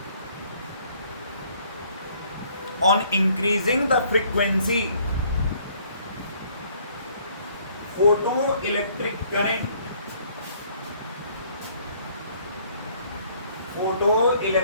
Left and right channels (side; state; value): both; inverted; correlation -0.61